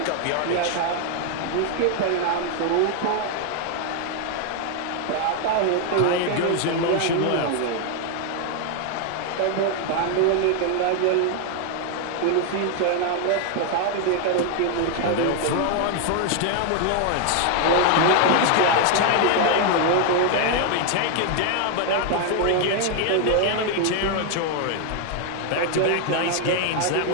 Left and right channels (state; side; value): different; both; correlation 0.00